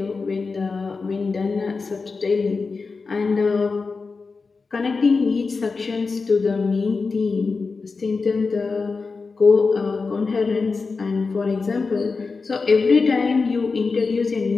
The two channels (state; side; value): quieter; right; 4.4 dB